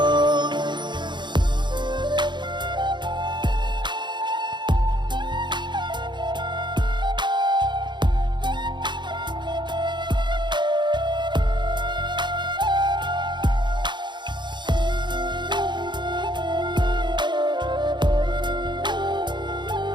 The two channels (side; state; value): left; late; 0.22 ms